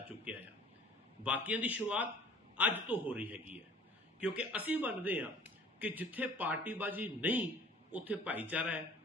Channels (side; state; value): both; normal; correlation 0.50